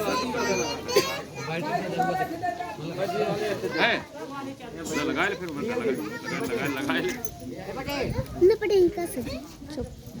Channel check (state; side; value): identical; both; correlation 1.00